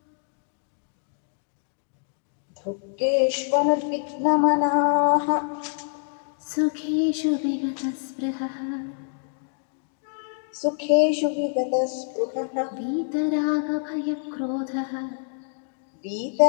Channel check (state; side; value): silent; right; digital silence